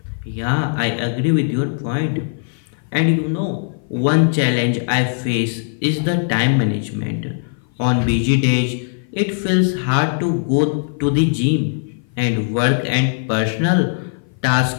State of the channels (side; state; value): right; silent; 57 dB below the other